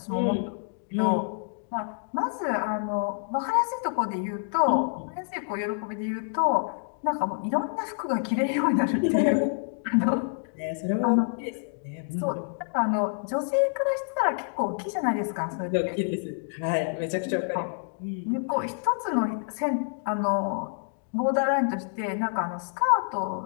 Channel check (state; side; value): silent; right; digital silence